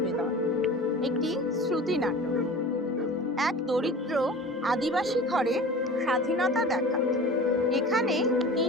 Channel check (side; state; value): both; normal; correlation 0.38